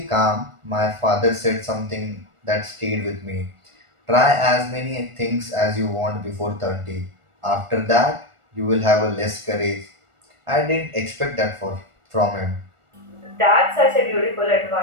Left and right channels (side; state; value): left; late; 1.4 ms